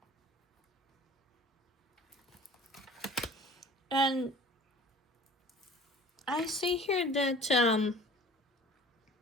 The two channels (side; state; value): both; normal; correlation 0.45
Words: And I see here that